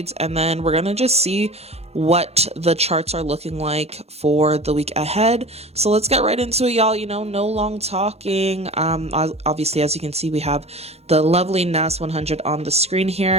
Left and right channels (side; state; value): left; late; 0.30 ms